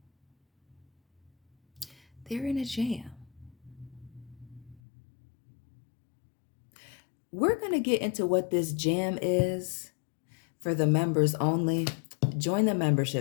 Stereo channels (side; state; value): right; drops out; at 4.8 s